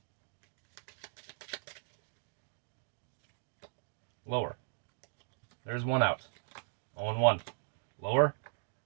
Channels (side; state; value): left; silent; digital silence